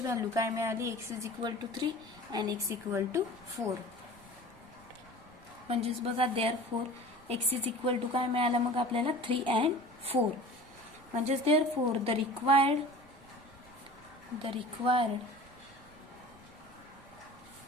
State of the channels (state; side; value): noise; right; rumble, 25 dB below the sound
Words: व्हॅल्यू काय मिळाली, x is equal to 3 and x equal to 4. म्हणजेच बघा therefore x is equal to काय मिळालं मग आपल्याला 3 अँड 4. म्हणजेच therefore the required